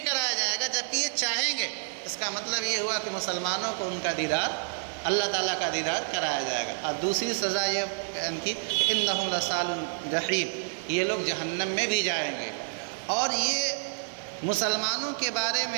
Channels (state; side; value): silent; left; digital silence